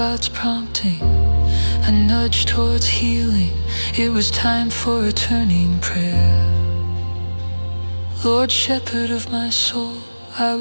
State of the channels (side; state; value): both; inverted; correlation -1.00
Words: prompting, a nudge towards healing. It was time for a turning prayer. Lord, shepherd of my soul, I